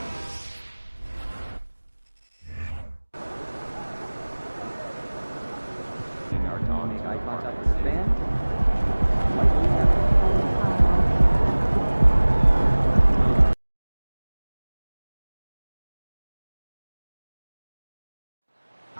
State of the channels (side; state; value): both; inverted; correlation -1.00